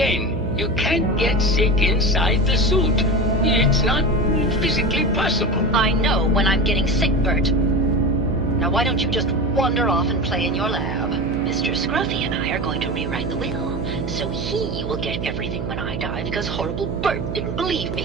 you can't get sick inside the suit. It's not physically possible. I know when I'm getting sick, Bert. Now why don't you just wander off and play in your lab? Mr. Scruffy and I are going to rewrite the will, so he will get everything when I die because horrible Bert didn't believe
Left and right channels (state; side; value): noise; right; hum, 4 dB below the sound